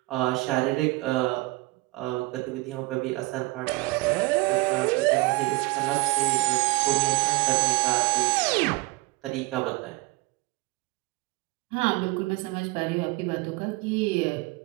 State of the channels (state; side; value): quieter; left; 23.3 dB